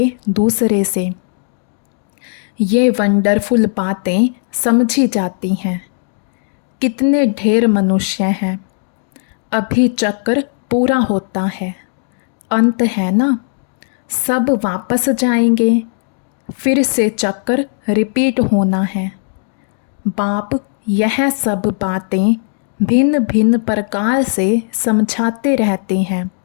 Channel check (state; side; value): silent; right; 69 dB below the other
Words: दूसरे से। ये वंडरफुल बातें समझी जाती हैं। कितने ढेर मनुष्य हैं। अभी चक्र पूरा होता है, अंत है ना, सब वापस जाएंगे, फिर से चक्र रिपीट होना है। बाप यह सब बातें भिन्न भिन्न प्रकार से समझाते रहते हैं,